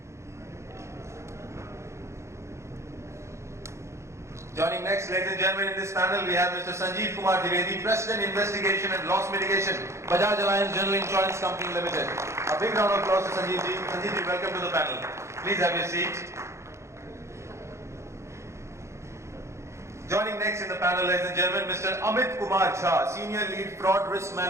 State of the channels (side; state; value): left; late; 0.14 ms